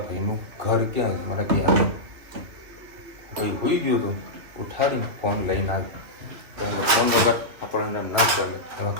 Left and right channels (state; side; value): late; left; 2.7 ms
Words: ભાઈનું ઘર ક્યાં છે. મને ક્યાં ભાઈ હોઈ ગયો હતો ઉઠાડીને ફોન લઈને આવ્યો. ફોન વગર આપણને ના ચાલે. એમાં